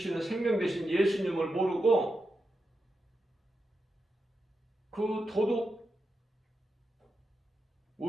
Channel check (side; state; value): both; normal; correlation 0.88